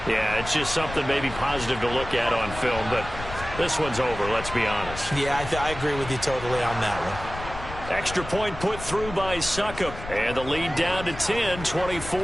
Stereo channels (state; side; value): noise; left; rumble, 11 dB below the sound